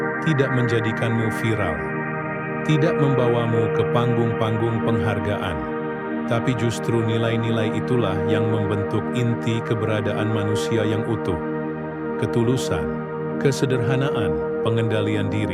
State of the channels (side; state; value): both; identical; correlation 1.00